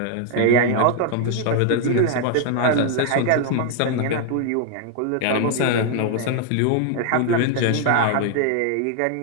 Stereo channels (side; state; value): both; different; correlation 0.00